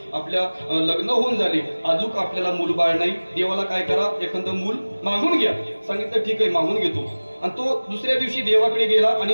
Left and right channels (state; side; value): inverted; both; correlation -1.00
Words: आपल्या लग्न होऊन झाले, अजून आपल्याला मूल बाळ नाही, देवाला काय करा, एखादं मूल मागून घ्या. सांगितलं, ठीक आहे मागून घेतो. आणि तो दुसऱ्या दिवशी देवाकडे गेला